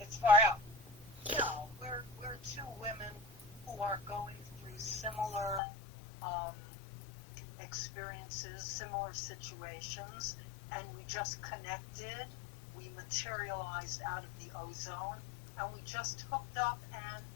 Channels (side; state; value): right; drops out; at 5.6 s